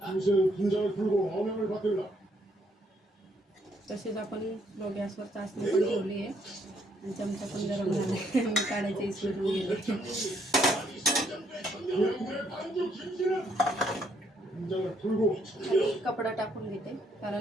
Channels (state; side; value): normal; both; correlation 0.70